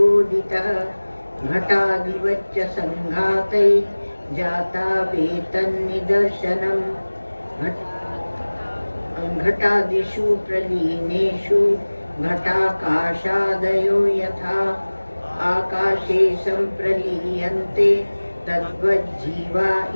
घटादिवच्च संघातैः जाता वेतन्निदर्शनम् घटादिषु प्रलीनेषु घटाकाशादयो यथा आकाशे संप्रलीयन्ते तद्वज्जीवा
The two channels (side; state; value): both; inverted; correlation -1.00